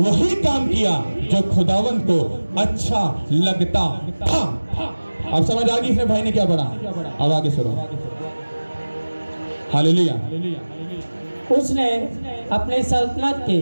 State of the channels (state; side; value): inverted; both; correlation -1.00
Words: काम किया जो खुदावंत को अच्छा लगता था। अब समझ आ गई इसने भाई ने क्या पढ़ा? अब आगे सुनो। हालेलुया। उसने अपनी सल्तनत के